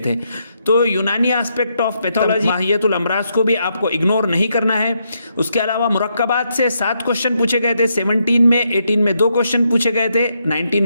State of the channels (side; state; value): both; inverted; correlation -0.79